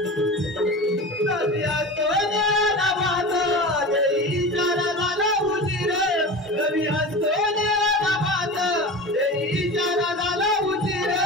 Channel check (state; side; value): normal; both; correlation 0.31